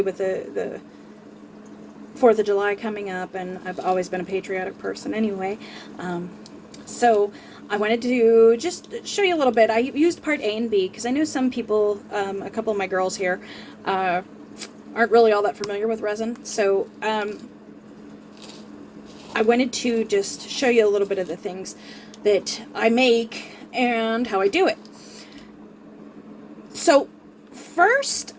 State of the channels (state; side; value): identical; both; correlation 1.00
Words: with the 4th of July coming up, and I've always been a patriotic person anyway. So I wanted to just show you a little bit. I used part A and B because I know some people, a couple of my girls here, aren't really all that familiar with resin. So I wanted to just show you a little bit of the things that I make and how I do it. So first,